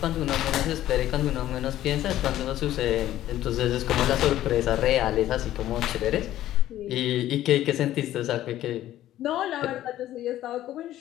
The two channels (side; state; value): right; quieter; 13.4 dB